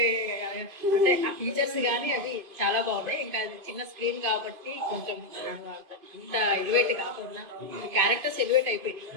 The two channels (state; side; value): late; left; 2.6 ms